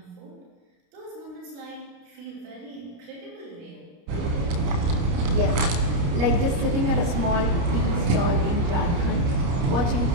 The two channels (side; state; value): left; late; 29 ms